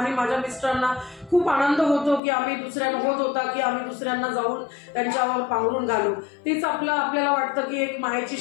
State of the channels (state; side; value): drops out; right; at 2.2 s